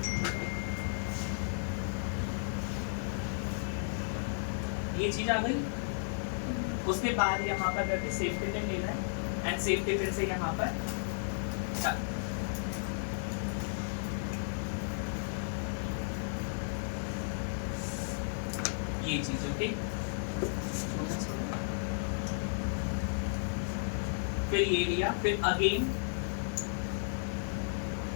ये चीज आ गई। उसके बाद यहाँ पर करके सेफ्टी पिन लेना है एंड सेफ्टी पिन से यहाँ पर ये चीज, ओके। फिर ये लिया, फिर अगेन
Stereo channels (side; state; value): right; silent; digital silence